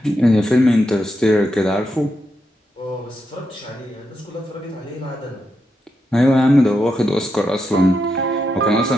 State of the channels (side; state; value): both; normal; correlation 0.84